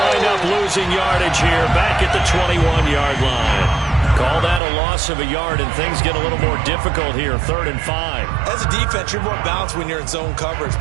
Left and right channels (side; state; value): left; drops out; at 4.6 s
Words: up losing yardage here back at the 21-yard line. Call that a loss of a yard, and things get a little more difficult here, 3rd and 5. As a defense, you're more balanced when you're in zone coverage